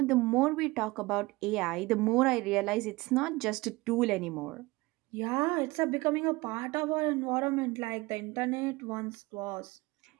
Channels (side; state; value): left; quieter; 21.9 dB